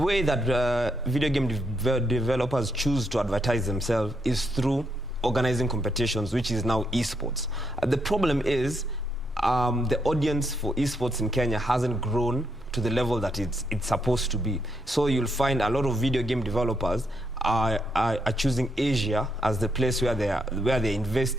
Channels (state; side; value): normal; both; correlation 0.78